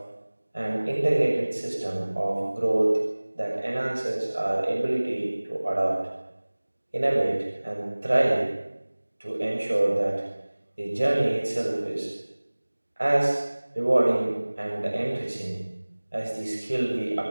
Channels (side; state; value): both; inverted; correlation -1.00